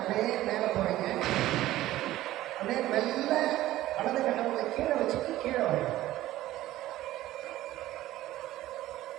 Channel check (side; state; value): left; quieter; 15.2 dB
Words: மேலே போகிறீங்க. அப்படியே மெல்ல வலது கட்டவரில் கீழே வச்சுட்டு கீழே வரீங்க.